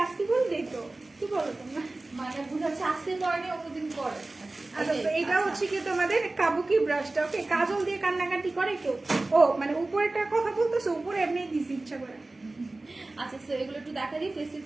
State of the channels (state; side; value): quieter; left; 3.0 dB